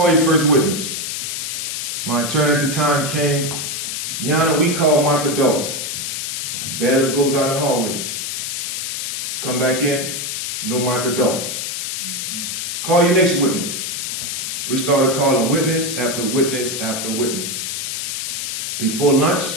your first witness. My attorney at the time came, Your Honor, we call Michael Dawes. Bailiff goes out in the hallway. Come back in, no Michael Dawes. Call your next witness. We started calling witness after witness after witness. Before lunch,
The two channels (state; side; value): noise; left; hiss, 3 dB below the sound